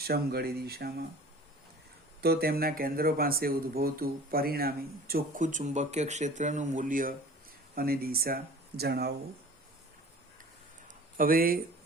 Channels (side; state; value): both; normal; correlation 0.43